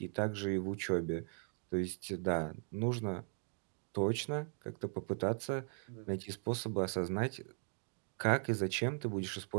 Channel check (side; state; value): left; silent; 52 dB below the other